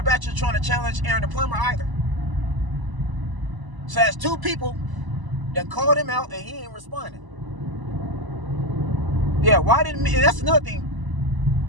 Bachelor trying to challenge Aaron the Plumber either. So that's two people that called him out and he ain't responding. Yeah, why didn't, and that's another thing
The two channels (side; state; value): left; late; 1.0 ms